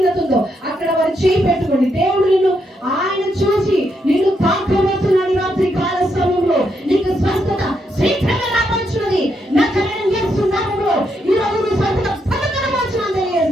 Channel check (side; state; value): both; normal; correlation 0.79